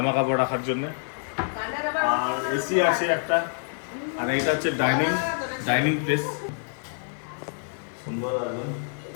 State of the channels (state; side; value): silent; right; 61 dB below the other